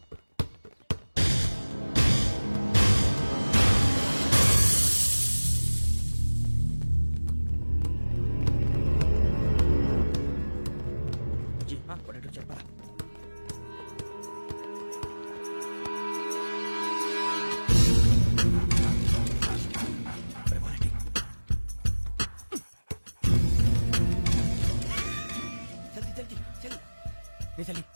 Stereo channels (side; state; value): both; inverted; correlation -1.00